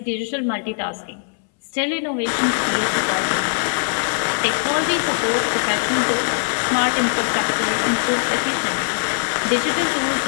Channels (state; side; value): silent; right; 65 dB below the other